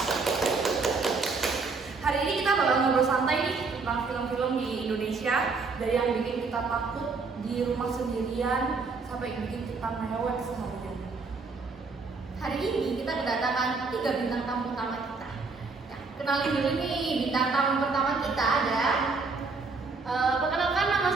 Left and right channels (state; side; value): quieter; left; 4.3 dB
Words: Hari ini kita bakal ngobrol santai nih tentang film-film di Indonesia, dari yang bikin kita takut di rumah sendirian sampai bikin kita mewek seharian. Hari ini kita kedatangan 3 bintang tamu utama kita. Ya, kenalin dulu nih bintang tamu pertama kita ada. Perkenalkan, nama